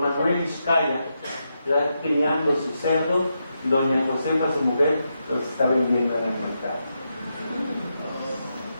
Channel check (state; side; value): inverted; both; correlation -0.85